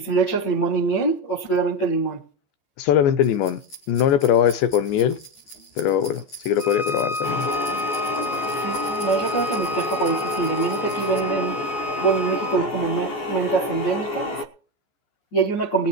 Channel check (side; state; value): right; late; 14 ms